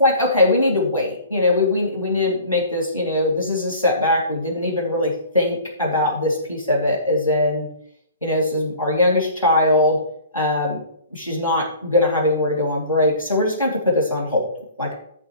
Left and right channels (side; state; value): both; inverted; correlation -0.46